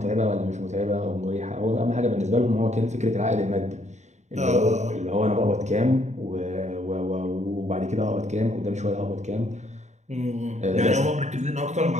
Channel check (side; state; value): left; late; 0.34 ms